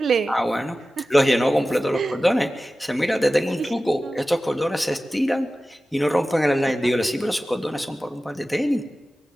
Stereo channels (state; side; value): normal; both; correlation 0.95